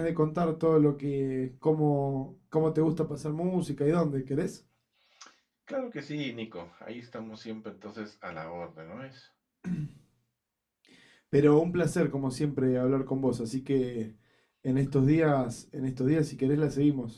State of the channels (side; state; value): both; identical; correlation 1.00